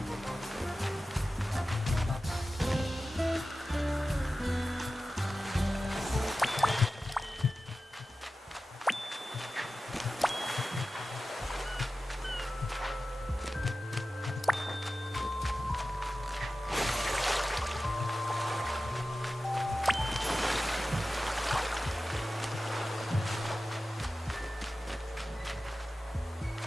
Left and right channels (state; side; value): normal; both; correlation 0.94